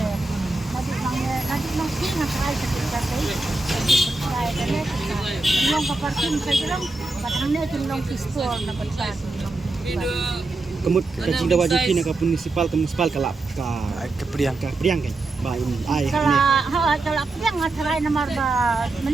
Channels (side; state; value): left; quieter; 3.1 dB